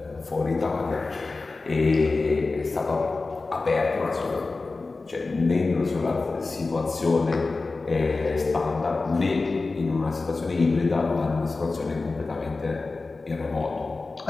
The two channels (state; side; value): quieter; right; 3.7 dB